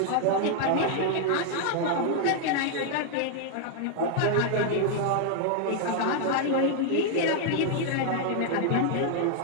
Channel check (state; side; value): different; both; correlation 0.00